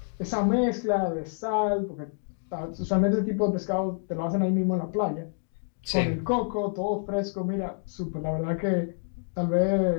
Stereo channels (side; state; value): right; silent; digital silence